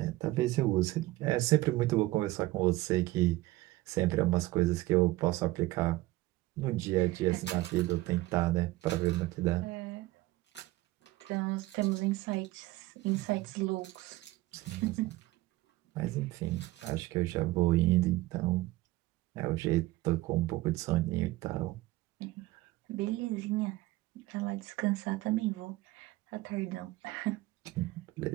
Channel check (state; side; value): quieter; left; 18.6 dB